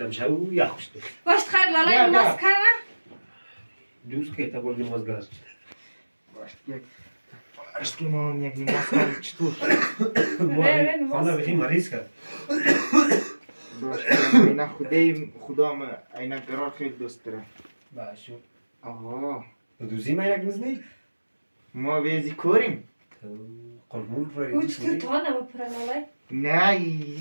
شو یا خوشت. باش خیر لالا نماز کنه. دوست که تا بردی نماز گذاشت. باش یک. اشکی ما یک نماز کنم چطور؟ خانه بخی مریض کرد. باش اینا خدا ما اینا قرار خیلی دوست داره. باشو. آها. دوزی ما یک نزنی؟ ما ویزی کوریم. قربون روی. او چطور تو نمیپره لالا؟ نه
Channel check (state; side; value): inverted; both; correlation -1.00